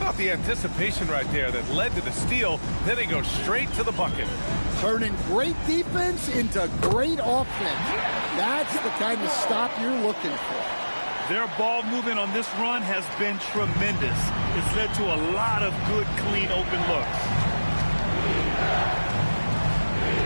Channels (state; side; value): inverted; both; correlation -1.00